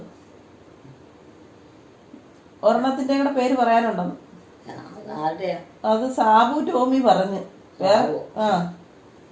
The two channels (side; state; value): both; identical; correlation 1.00